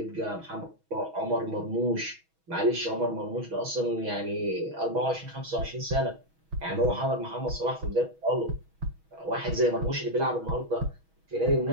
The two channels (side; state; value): left; late; 6.2 ms